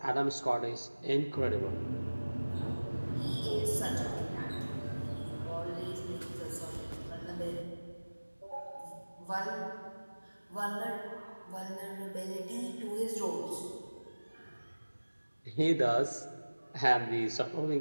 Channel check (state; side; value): inverted; both; correlation -1.00